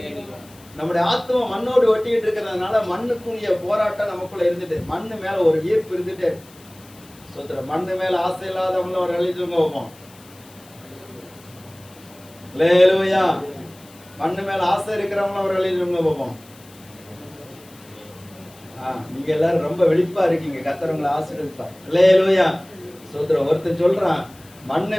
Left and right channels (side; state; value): left; noise; hiss, 24 dB below the sound